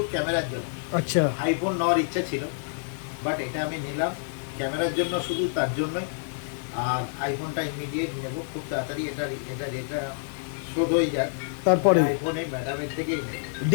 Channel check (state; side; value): silent; right; digital silence